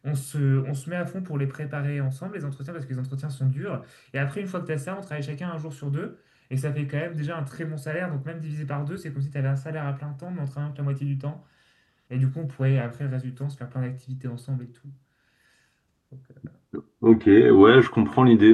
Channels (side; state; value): both; identical; correlation 1.00